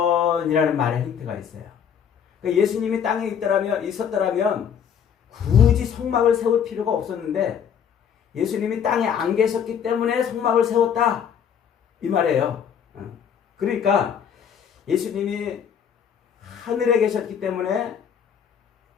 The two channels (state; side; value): quieter; right; 8.0 dB